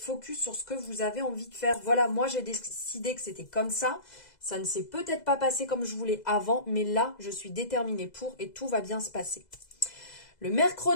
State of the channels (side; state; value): right; late; 2.0 ms